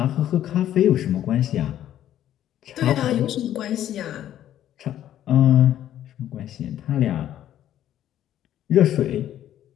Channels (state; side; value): quieter; right; 11.7 dB